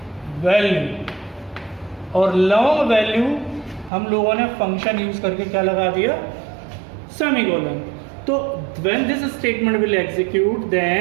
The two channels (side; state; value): left; drops out; at 3.9 s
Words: वैल्यू और लॉन्ग वैल्यू हम लोगों ने फंक्शन यूज करके क्या लगा दिया, सेमीकोलन। तो when this statement will execute